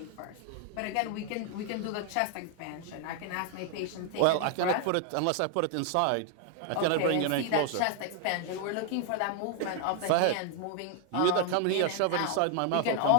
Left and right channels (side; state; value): both; different; correlation 0.00